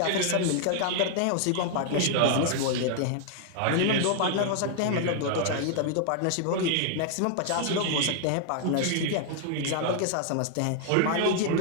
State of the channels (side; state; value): both; different; correlation 0.00